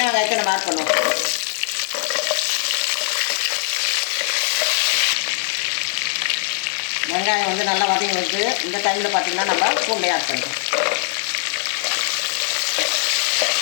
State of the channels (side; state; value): right; silent; 63 dB below the other